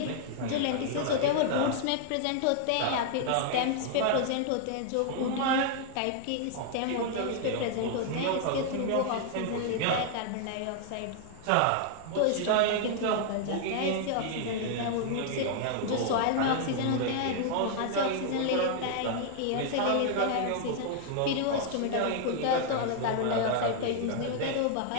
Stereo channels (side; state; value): both; different; correlation 0.00